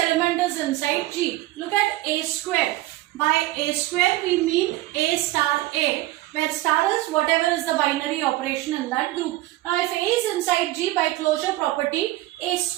is inside G. Look at A square. By A square, we mean A star A, where star is whatever is the binary operation in that group. Now, if A is inside G, by closure property, A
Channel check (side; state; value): left; quieter; 17.3 dB